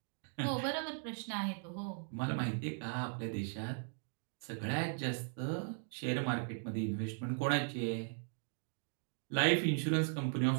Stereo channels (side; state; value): left; silent; 52 dB below the other